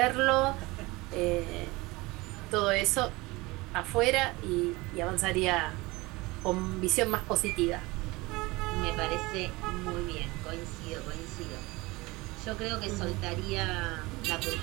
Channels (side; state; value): left; quieter; 22.4 dB